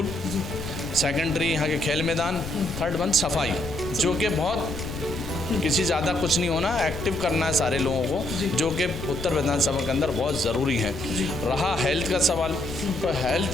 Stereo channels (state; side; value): noise; left; rumble, 9 dB below the sound